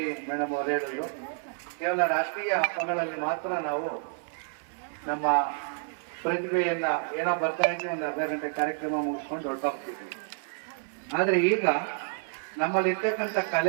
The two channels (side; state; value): left; silent; 57 dB below the other